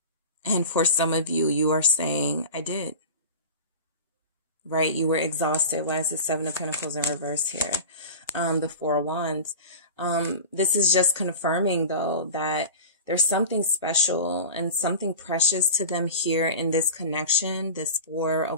And for some of you, you are saying, I did. Right? You were exhausted. Why is the Seven of Pentacles in reverse here? The Four of Wands. This is just confirming, though, that there's something special and something precious to them here in this connection. This Four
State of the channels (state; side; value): inverted; both; correlation -0.31